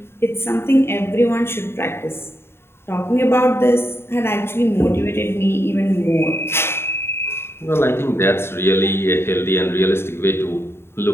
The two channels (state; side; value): late; right; 0.12 ms